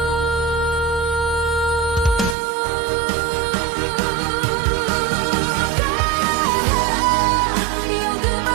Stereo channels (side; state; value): left; drops out; at 2.4 s